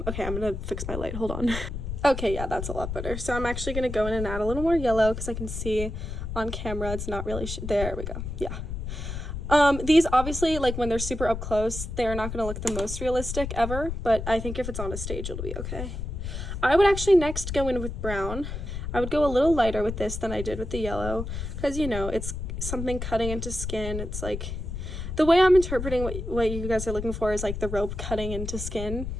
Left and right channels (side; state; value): left; noise; rumble, 6 dB below the sound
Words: I'm gonna fix my light, hold on. Okay, yeah, that's a lot better. So I'm actually gonna go in and add a little more yellow, because I can see on camera it's not really, there we go, yeah. These obviously, like, when they're super up close, they're not gonna look the most realistic ever, but I think if it's on a stage, it'll be okay. I would actually next go in with brown. I would go a little lighter with this than I did with the yellow, because, you know, it's something cutting into skin. It's like, the way I'm interpreting what you guys are looking for is, like, the rope cutting into skin.